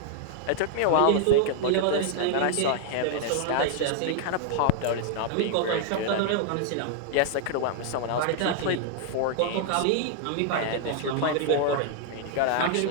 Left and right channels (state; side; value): different; both; correlation 0.00